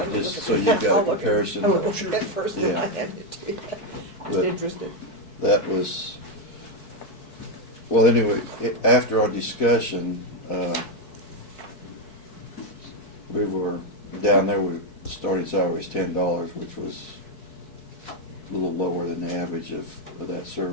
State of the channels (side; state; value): right; late; 4.6 ms